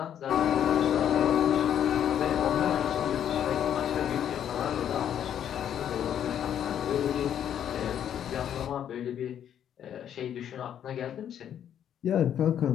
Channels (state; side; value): quieter; right; 9.7 dB